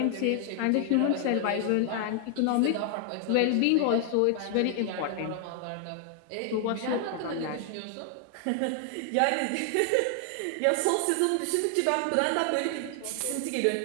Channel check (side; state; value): both; different; correlation 0.00